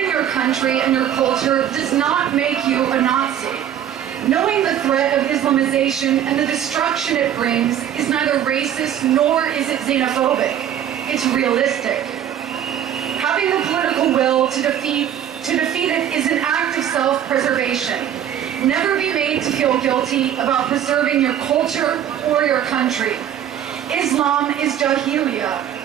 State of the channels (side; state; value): left; quieter; 10.1 dB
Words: your country and your culture does not make you a Nazi. Knowing the threat of Islamization and the destruction it brings is neither racist nor is it xenophobic. It's realistic. Having the political will to defeat it is an act of self-preservation. Never be made to feel guilty about preserving your culture or your country. Islam is Jahiliyyah.